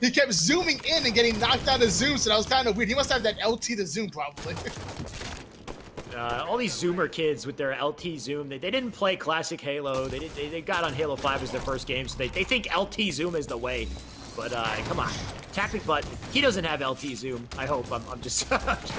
He kept zooming in and getting knocked out of zoom, so that was kind of weird. He must have that LT to zoom probably. All these Zoomer kids with their LT zoom, they didn't play classic Halo. They got on Halo 5 as their first game, so they think LT zoom is the way. But come on, tapping button. He doesn't have LT zoom. I hope. I'm just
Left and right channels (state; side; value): identical; both; correlation 1.00